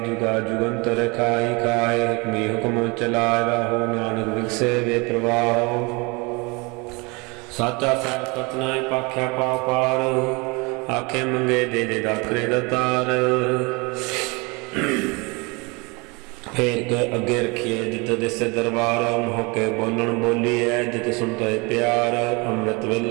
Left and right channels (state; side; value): quieter; left; 28.0 dB